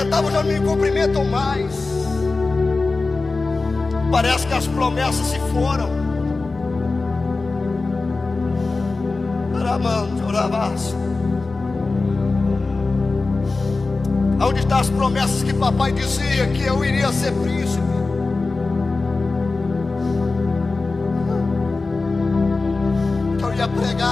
já não me cumprimentam mais. Parece que as promessas se foram. Onde estão as promessas que papai dizia que eu iria ser príncipe? Que eu ia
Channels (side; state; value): right; quieter; 3.7 dB